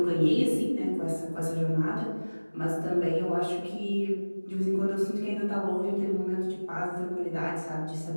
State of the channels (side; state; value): both; inverted; correlation -1.00